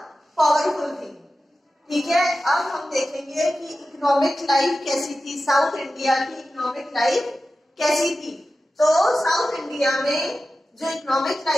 पावरफुल थी। ठीक है, अब हम देखेंगे कि इकोनॉमिक लाइफ कैसी थी, साउथ इंडिया की इकोनॉमिक लाइफ कैसी थी। तो साउथ इंडिया में जो इकोनॉमिक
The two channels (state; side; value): normal; both; correlation 0.94